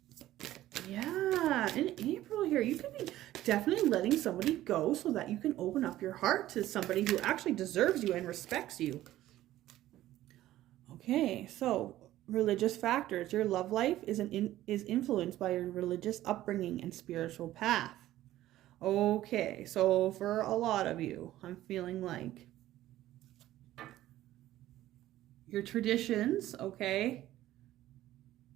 yeah, in April here, you could be definitely letting somebody go so that you can open up your heart to somebody who actually deserves you and respects you. Okay, so religious factors. Your love life is influenced by your religious upbringing and spiritual path. Okay, so for a lot of you, I'm feeling like your traditions, okay,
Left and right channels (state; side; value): quieter; left; 14.4 dB